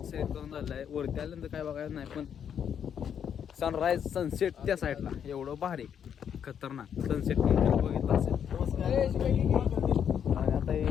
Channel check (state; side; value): quieter; right; 8.3 dB